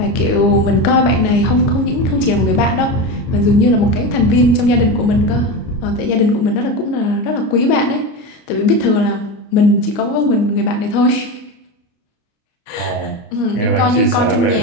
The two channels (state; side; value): late; right; 30 ms